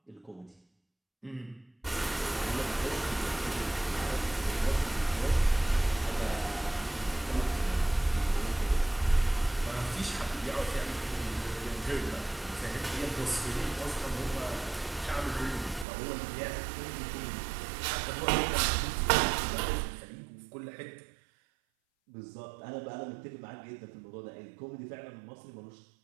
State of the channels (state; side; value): drops out; left; at 15.9 s